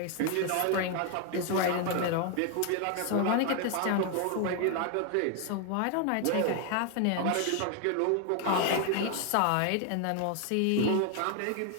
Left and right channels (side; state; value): both; different; correlation 0.01